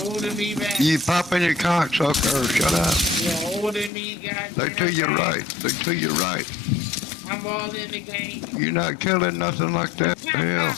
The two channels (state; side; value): drops out; right; at 3.9 s